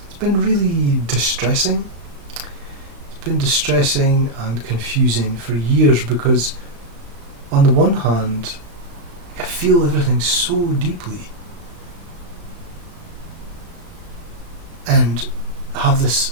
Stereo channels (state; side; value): late; left; 35 ms